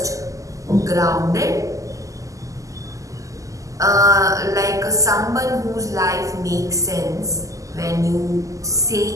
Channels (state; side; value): late; left; 0.16 ms